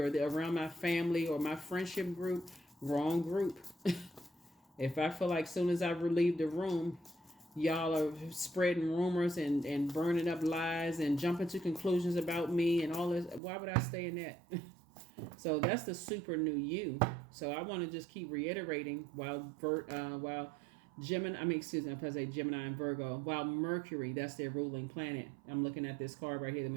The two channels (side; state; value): left; drops out; at 13.4 s